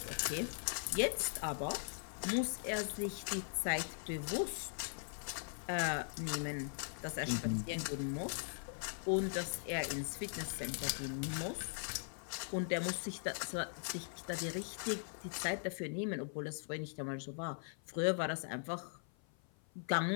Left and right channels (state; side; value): silent; right; 51 dB below the other